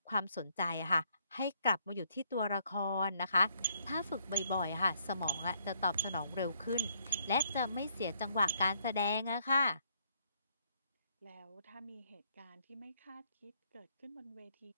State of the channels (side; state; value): both; inverted; correlation -0.70